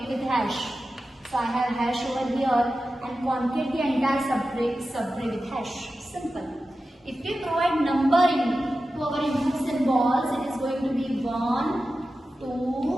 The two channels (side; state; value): both; normal; correlation 0.93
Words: with hash. So I have hash over here, and concate the entire subtree with hash. Simple. If we provide numbering to our input symbols, it is going to be 1,